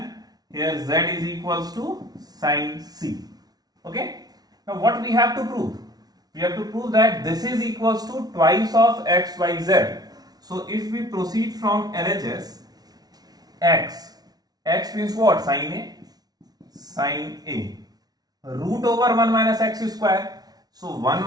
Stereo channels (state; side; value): late; left; 0.19 ms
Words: here z is equals to sine c. Okay, now what we have to prove? We have to prove that this is equals to twice of x, y, z. So if we proceed from LHS, x means what? Sine a, sine a, root over 1 minus x square. So 1